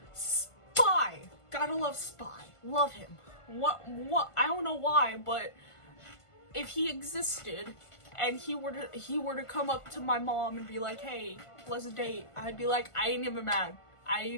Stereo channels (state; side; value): late; right; 1.5 ms